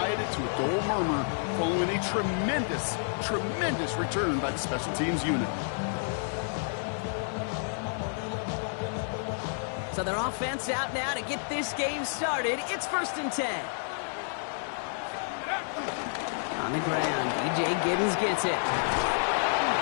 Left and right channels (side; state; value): right; silent; digital silence